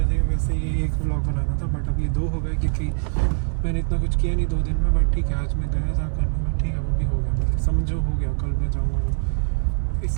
ये 1 ब्लॉग बनाना था, बट अब ये 2 हो गए क्योंकि मैंने इतना कुछ किया नहीं 2 दिन में। बट ठीक है, आज मैं गया था करने में, ठीक है, वो भी हो गया, मतलब समझो हो गया। कल मैं जाऊँगा वो,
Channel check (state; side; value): silent; left; digital silence